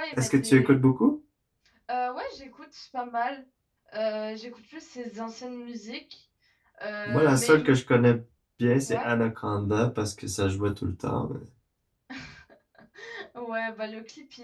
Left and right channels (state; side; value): identical; both; correlation 1.00